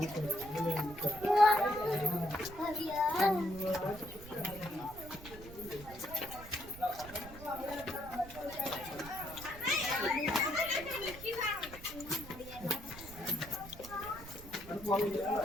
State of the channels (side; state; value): right; noise; rumble, 15 dB below the sound